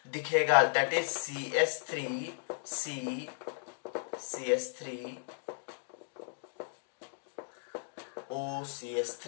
दिखेगा, दैट इज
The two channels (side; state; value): right; silent; digital silence